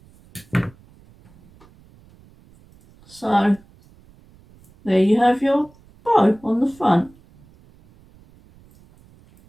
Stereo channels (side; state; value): right; noise; rumble, 28 dB below the sound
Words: So there you have your bow on the front.